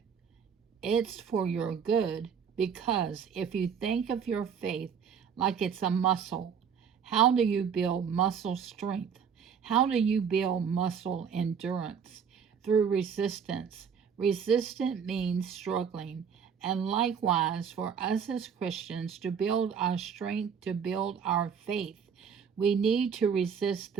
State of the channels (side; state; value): left; quieter; 7.0 dB